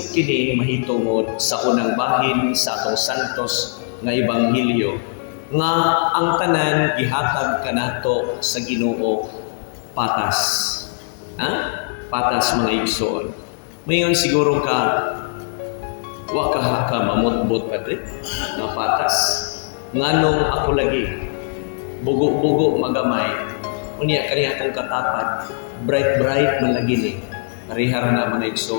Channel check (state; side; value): silent; right; digital silence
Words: kini mahitungod sa unang bahin sa atong santos nga ebanghelyo nga ang tanan gihatag kanato sa Ginoo patas. Patas mga igsoon. Mayon siguro ka wa ka mamutbot padre nga patas. Nganong ako lagi bugo-bugo magamay unya kaniya akong katapat bright man lagi ni parihara na mga